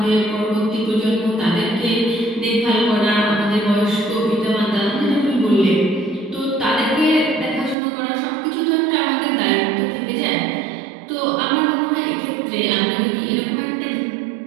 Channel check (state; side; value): drops out; left; at 7.8 s